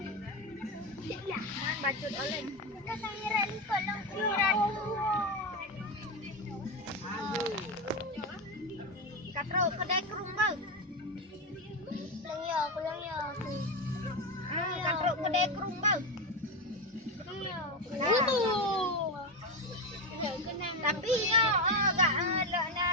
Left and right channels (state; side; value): normal; both; correlation 0.13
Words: Man bacut oleh. Kita sangiran kolong kiran. Katro kedai kerung bau. Kulang ya. Katro kedai kerung bau. Tapi agak